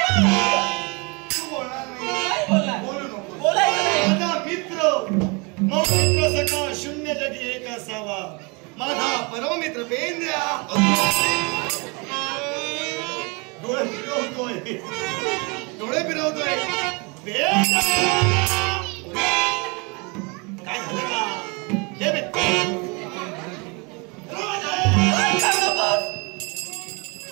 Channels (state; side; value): quieter; left; 30.0 dB